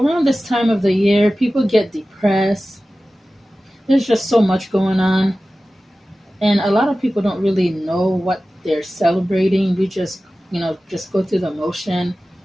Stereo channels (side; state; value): both; normal; correlation 0.96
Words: this time of the year, people get depressed. There's just so much going on. And a lot of people don't really know what they're celebrating. We just go through the motion.